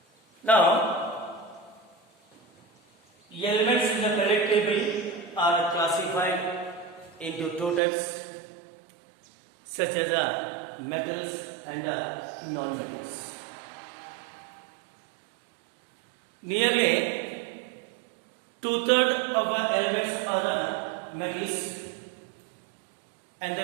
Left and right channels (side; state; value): left; drops out; at 7.8 s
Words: Now, elements in the periodic table are classified into two types, such as metals and non-metals. Nearly two-thirds of our elements are metals and the